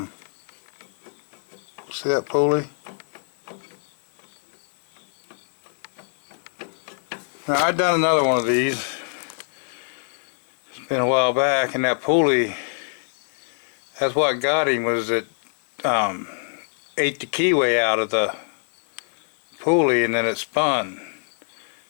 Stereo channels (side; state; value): right; silent; digital silence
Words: see that pulley? Now I've done another one of these. It's been a while back, and that pulley, that's what got him, was it ate the keyway out of the pulley and then it spun.